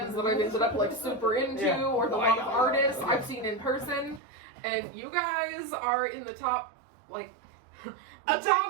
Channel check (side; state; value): left; drops out; at 4.2 s